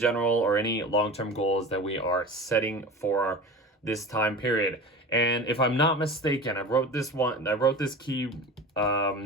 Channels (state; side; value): normal; both; correlation 0.33